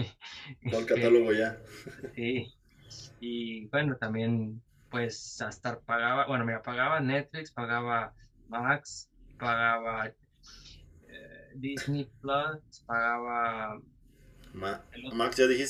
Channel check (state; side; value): identical; both; correlation 1.00